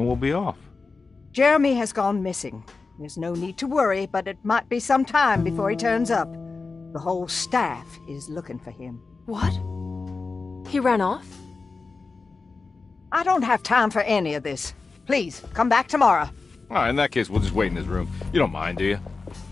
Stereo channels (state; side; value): quieter; right; 4.1 dB